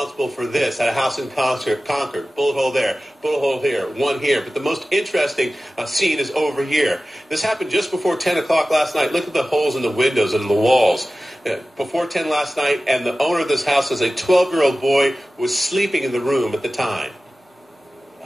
for this at a house in Concord. Bullet hole there, bullet hole here, one here. But the most interesting scene is over here. This happened just before 10 o'clock last night. Look at the holes in the windows and the walls. Before 10 last night, and the owner of this house says a 12-year-old boy was sleeping in the room at the time.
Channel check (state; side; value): normal; both; correlation 0.95